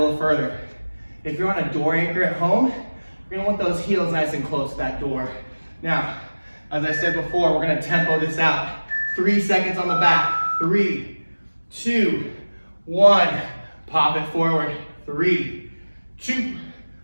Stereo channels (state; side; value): inverted; both; correlation -1.00